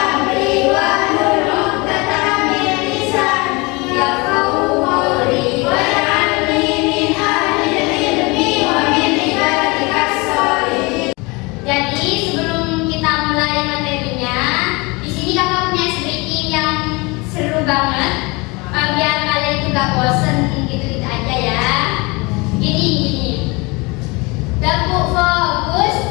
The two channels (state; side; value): quieter; right; 26.2 dB